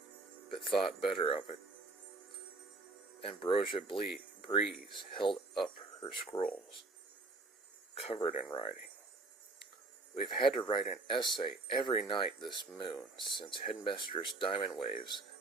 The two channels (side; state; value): left; quieter; 3.4 dB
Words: but thought better of it. Ambrosia Breeze held up her scrolls, covered in writing. We've had to write an essay every night this moon since Headmistress Diamond Waves